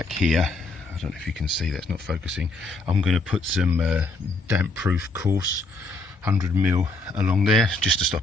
here, I don't know if you can see, that's not focusing, I'm going to put some damp proof coarse 100mm along there, just to stop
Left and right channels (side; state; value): right; quieter; 3.0 dB